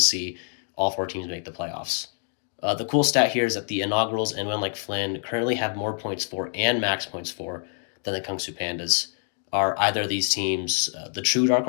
see all four teams make the playoffs. The cool stat here is that the inaugurals and Win Like Flynn currently have more points for and max points for than the Kungsu Pandas. Are either of these teams the true dark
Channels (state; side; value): silent; right; 57 dB below the other